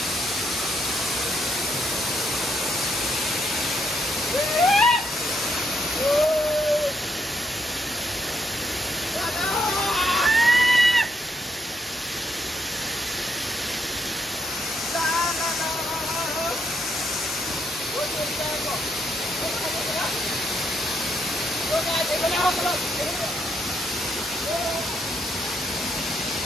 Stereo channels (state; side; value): normal; both; correlation 0.76